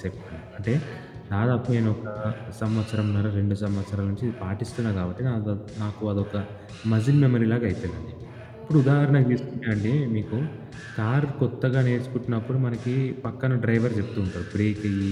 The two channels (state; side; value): identical; both; correlation 1.00